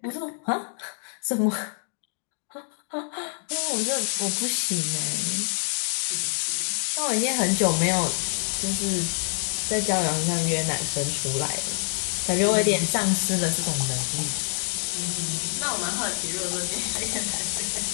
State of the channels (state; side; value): silent; right; digital silence